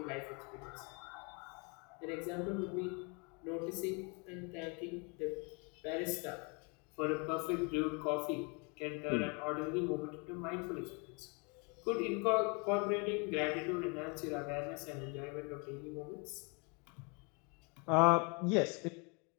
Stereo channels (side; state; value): right; quieter; 32.9 dB